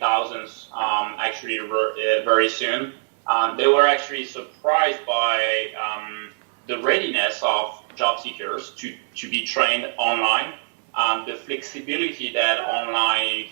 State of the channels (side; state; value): left; silent; 63 dB below the other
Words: actually very soon. They were actually surprised by the readiness of job seekers to be trained online. The flexibility that online